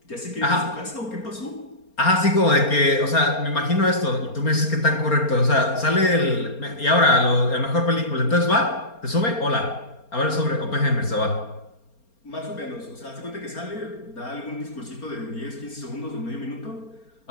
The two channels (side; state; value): right; late; 4.3 ms